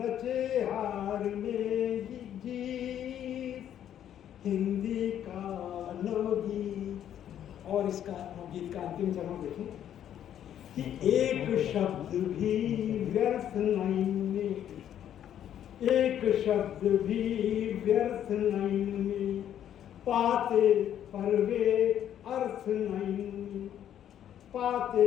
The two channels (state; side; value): quieter; right; 10.4 dB